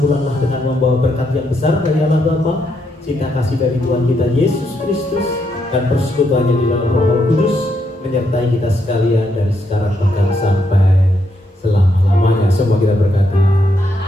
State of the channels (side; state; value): both; normal; correlation 0.78